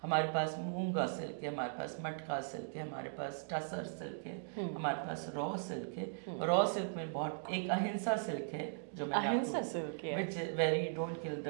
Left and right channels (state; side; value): silent; left; digital silence